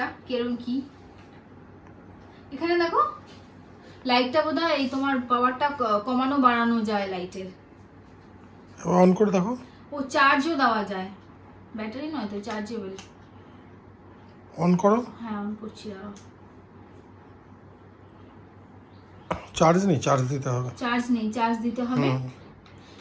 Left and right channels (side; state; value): both; identical; correlation 1.00